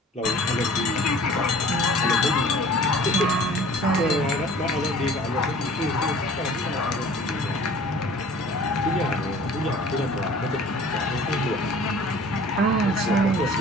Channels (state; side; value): normal; both; correlation 0.48